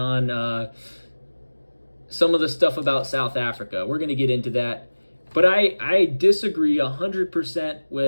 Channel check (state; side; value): inverted; both; correlation -1.00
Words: some of the stuff about South Africa. We're going to get into that. But I disagree 100%